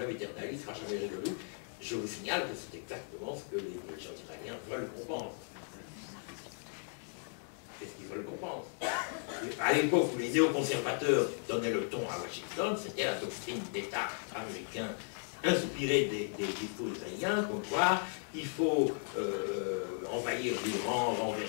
éternel, il ne sera jamais résolu. Je vous signale que c'est exactement ce que les gens israéliens veulent qu'on pense. C'est ce qu'ils veulent qu'on pense. À l'époque où les néoconservateurs donnaient le ton à Washington, c'était la doctrine d'État américain inspirée des discours israéliens, comme quoi il faut envahir l'Iran,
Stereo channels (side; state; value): right; silent; 54 dB below the other